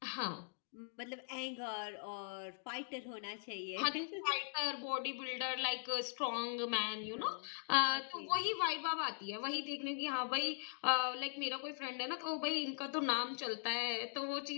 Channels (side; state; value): right; silent; digital silence